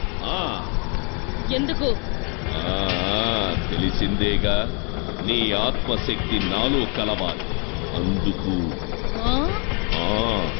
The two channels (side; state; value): right; quieter; 35.9 dB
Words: ఎందుకు? తెలిసిందేగా, నీ ఆత్మశక్తి నాలో కలవాలి. అందుకు